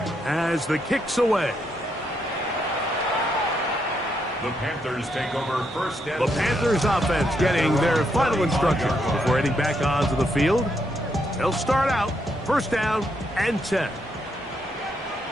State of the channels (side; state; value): both; normal; correlation 0.78